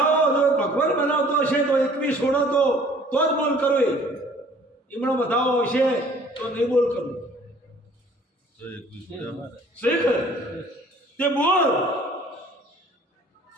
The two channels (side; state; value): both; normal; correlation 0.54